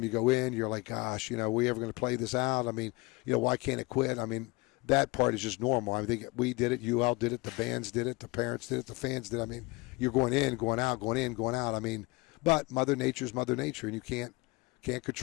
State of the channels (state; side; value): quieter; right; 24.7 dB